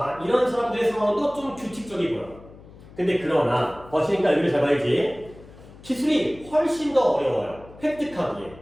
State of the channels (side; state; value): left; noise; hum, 20 dB below the sound